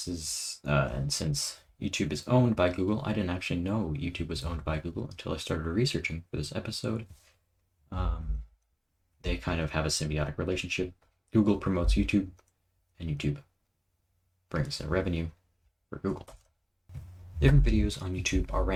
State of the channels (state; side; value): identical; both; correlation 1.00